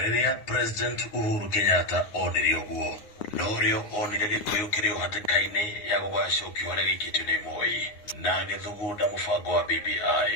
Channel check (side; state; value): right; late; 9.7 ms